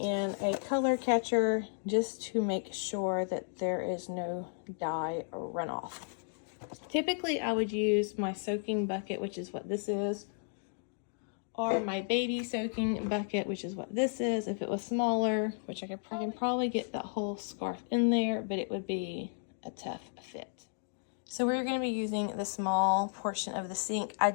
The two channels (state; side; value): silent; right; digital silence